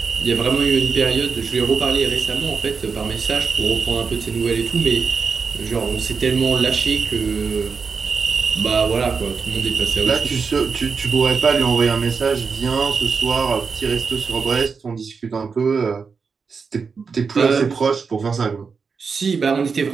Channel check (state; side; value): quieter; left; 5.4 dB